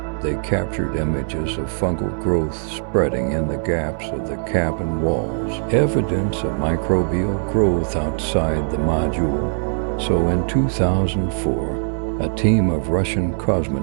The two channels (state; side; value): silent; left; 65 dB below the other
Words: they captured images of fungal growth spreading in the gaps of the cabin walls, evidence of microbial growth outside the module. So in 2004, a team of Russian